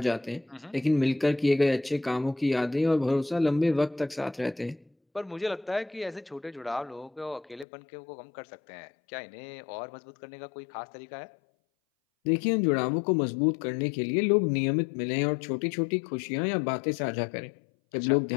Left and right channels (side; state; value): right; drops out; at 7.7 s